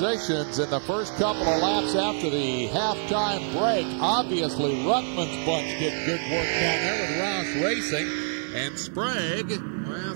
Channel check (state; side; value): silent; left; digital silence